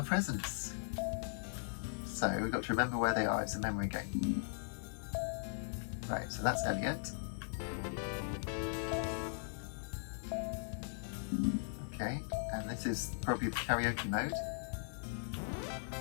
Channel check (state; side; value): silent; right; digital silence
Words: presents. So we've got to remember where they are. It's a memory game. Right, so that's Elliot. Okay, and this is probably the karaoke mode.